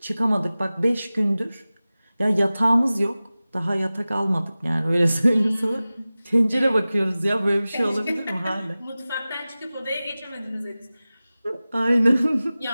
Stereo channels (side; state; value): both; inverted; correlation -0.97